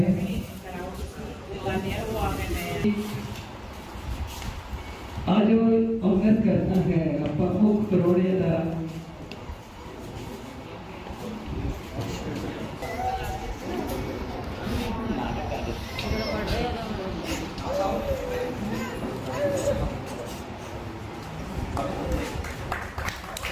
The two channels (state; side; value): identical; both; correlation 1.00